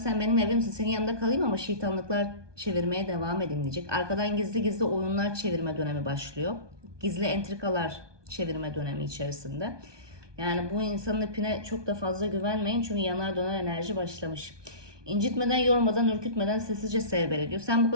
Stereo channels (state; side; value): late; left; 1.2 ms